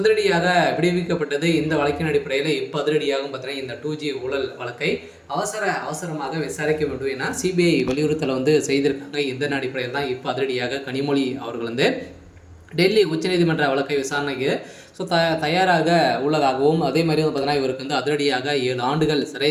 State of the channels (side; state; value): both; identical; correlation 1.00